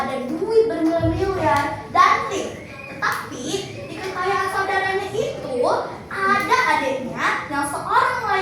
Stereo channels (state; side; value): identical; both; correlation 1.00